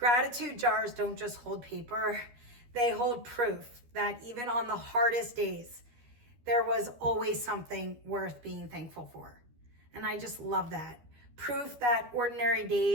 jars don't just hold paper, they hold proof that even on the hardest days, there was always something worth being thankful for. And I just love that. Proof that ordinary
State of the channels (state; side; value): late; left; 12 ms